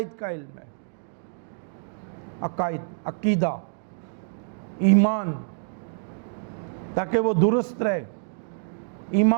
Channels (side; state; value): left; silent; digital silence